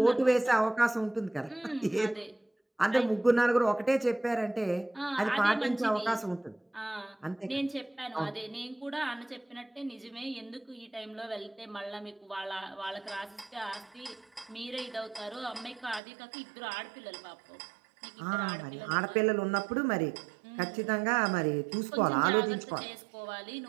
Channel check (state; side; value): drops out; left; at 16.0 s